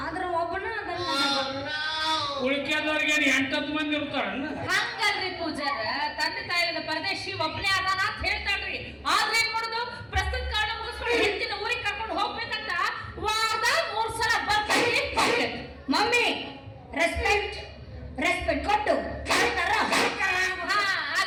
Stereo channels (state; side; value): identical; both; correlation 1.00